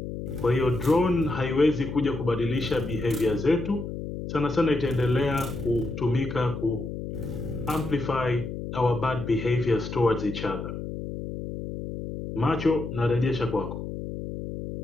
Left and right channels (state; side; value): noise; left; hum, 7 dB below the sound